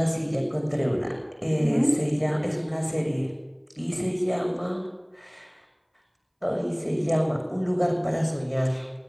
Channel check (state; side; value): identical; both; correlation 1.00